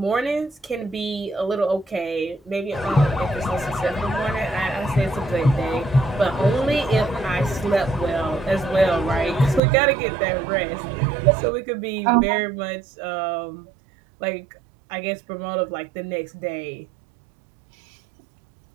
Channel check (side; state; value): left; drops out; at 9.6 s